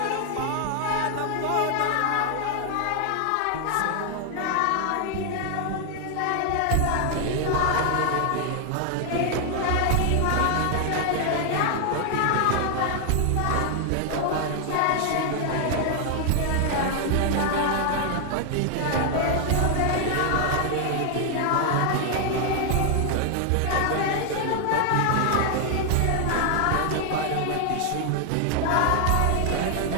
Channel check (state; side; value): different; both; correlation 0.00